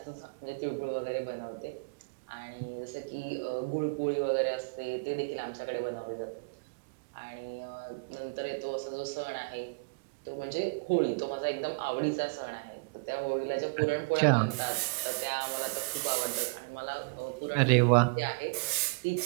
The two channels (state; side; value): quieter; left; 35.9 dB